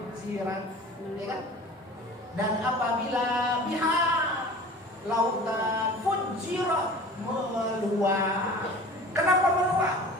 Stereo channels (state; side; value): normal; both; correlation 0.41